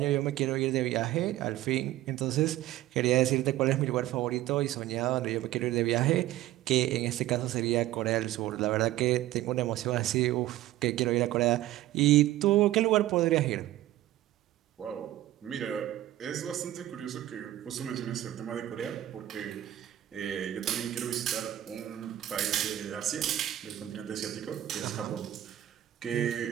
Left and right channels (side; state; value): left; quieter; 14.3 dB